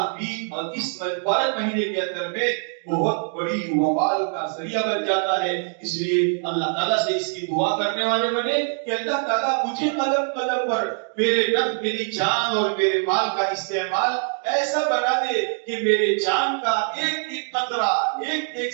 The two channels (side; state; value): left; silent; 59 dB below the other